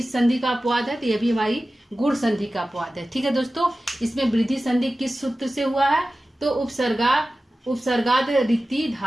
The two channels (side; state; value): both; normal; correlation 0.95